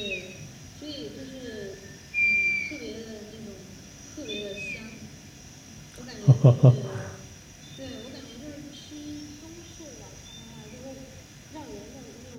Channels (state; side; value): identical; both; correlation 1.00